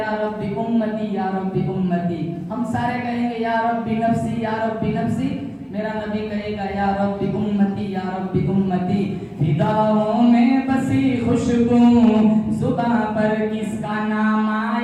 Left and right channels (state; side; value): identical; both; correlation 1.00